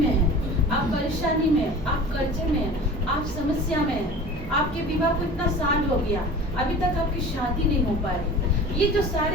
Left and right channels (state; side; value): normal; both; correlation 0.39